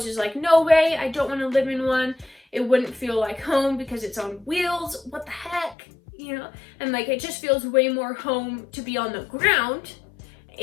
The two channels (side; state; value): right; drops out; at 5.8 s